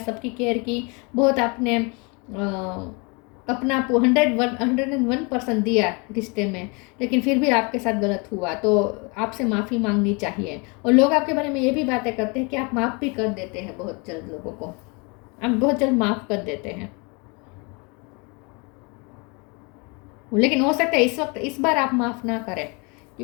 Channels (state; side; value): quieter; right; 30.7 dB